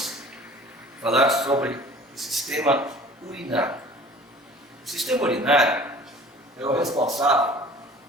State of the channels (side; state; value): both; normal; correlation 0.46